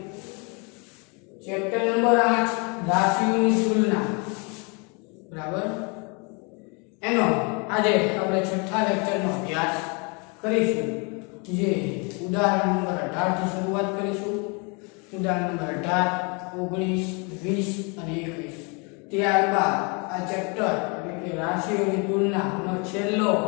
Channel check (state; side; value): quieter; right; 32.6 dB